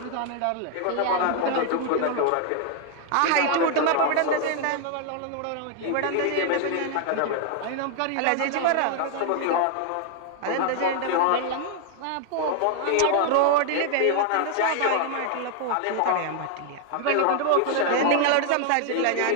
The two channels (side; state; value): both; different; correlation 0.00